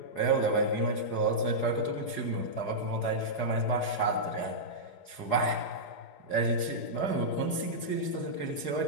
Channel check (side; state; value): right; late; 4.8 ms